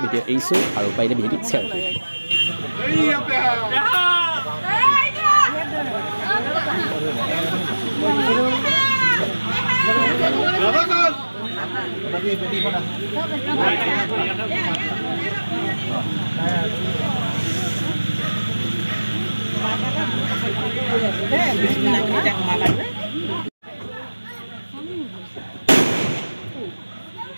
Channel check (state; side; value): inverted; both; correlation -1.00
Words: ভিডিঅ' এৰিছোঁ আৰু পাৰিলে ভিডিঅ'টি শ্বেয়াৰ